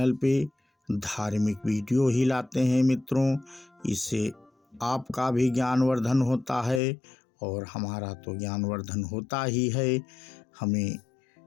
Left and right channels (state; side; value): drops out; right; at 6.8 s